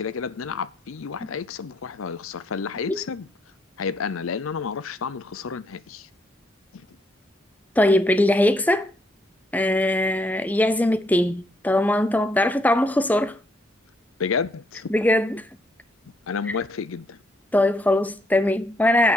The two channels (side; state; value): both; normal; correlation 0.73